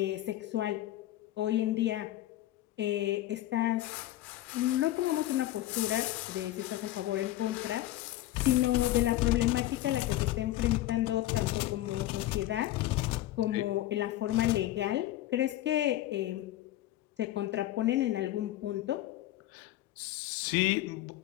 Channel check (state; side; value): quieter; right; 14.8 dB